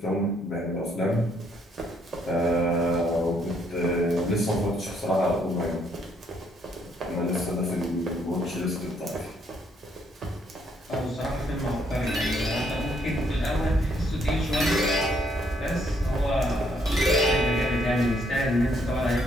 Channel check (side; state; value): both; normal; correlation 0.70